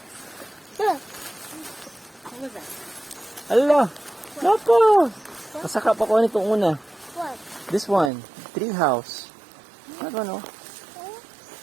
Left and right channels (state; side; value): drops out; left; at 8.1 s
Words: Look. What was that? Ala! Naku! Pasaka pa ko nitong una. What? This one. Tree house. I don't know.